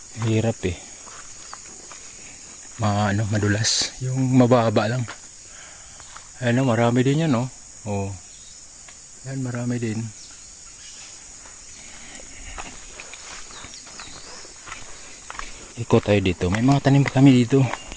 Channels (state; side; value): identical; both; correlation 1.00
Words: hirap eh. Madulas. Yung mababa lang. Ayan o, marami din yan o. Oh. Ayan, marami din. Ikot tayo dito. May mga tanim pa kami dito.